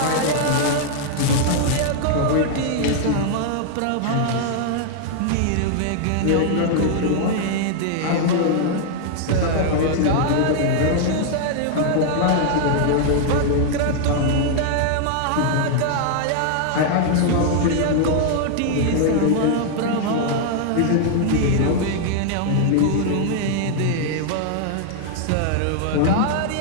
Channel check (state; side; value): different; both; correlation -0.01